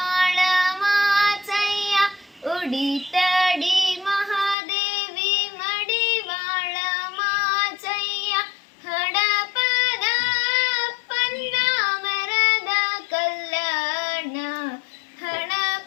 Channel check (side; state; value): right; drops out; at 4.5 s